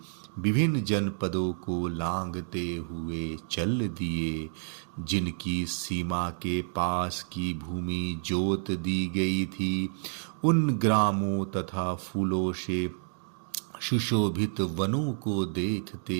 विभिन्न जनपदों को लांघते हुए चल दिए। जिनकी सीमा के पास की भूमि जोत दी गई थी, उन ग्रामों तथा फूलों से सुशोभित वनों को देखते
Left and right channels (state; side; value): silent; left; digital silence